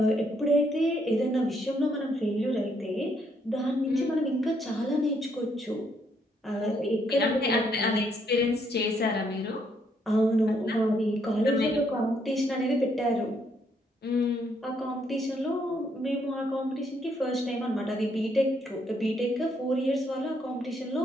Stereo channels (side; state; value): both; normal; correlation 0.72